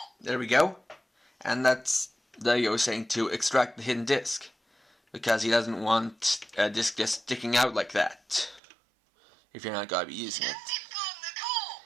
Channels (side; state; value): left; drops out; at 8.6 s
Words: There we go. And that's DaiGoyo saying to extract the hidden disc, because he doesn't want a disc just sticking out like that if you're not going to be using it.